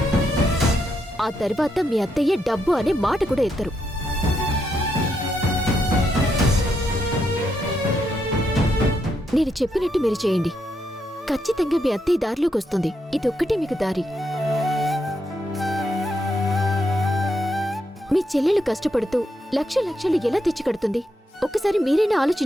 ఆ తర్వాత మీ అత్తయ్య డబ్బు అనే మాట కూడా ఎత్తరు. నేను చెప్పినట్టు మీరు చేయండి. ఖచ్చితంగా మీ అత్తయ్య దారిలోకి వస్తుంది. ఇదొక్కటే మీకు దారి. మీ చెల్లెలు కష్టపడుతూ లక్షలు ఎలా తెచ్చి కడుతుంది? ఒక్కసారి మీరైనా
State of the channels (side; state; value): both; normal; correlation 0.80